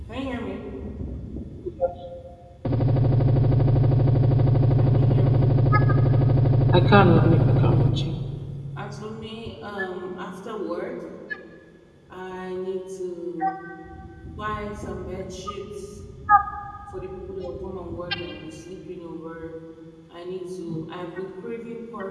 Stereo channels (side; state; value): both; identical; correlation 1.00